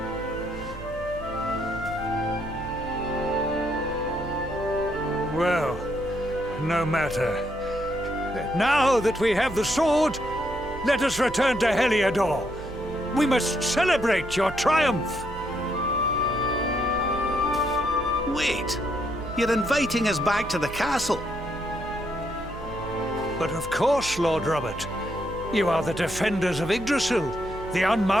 Well, no matter. Now that we have the sword, let us return to Heliodor. We must celebrate your triumph. Wait, you're inviting us back to the castle. But of course, Lord Robert. You are the defenders of Yggdrasil, the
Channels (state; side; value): noise; right; hum, 13 dB below the sound